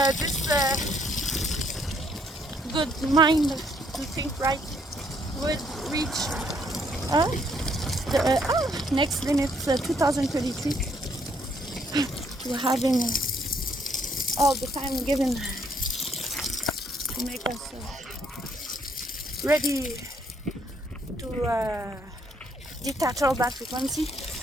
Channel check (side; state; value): both; normal; correlation 0.69